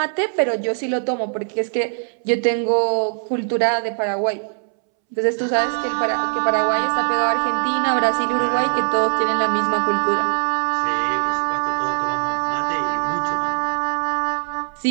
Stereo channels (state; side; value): silent; left; 65 dB below the other